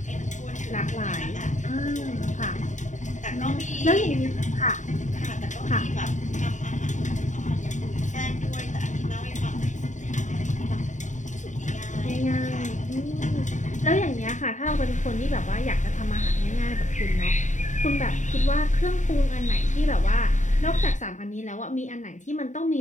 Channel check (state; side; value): late; right; 0.36 ms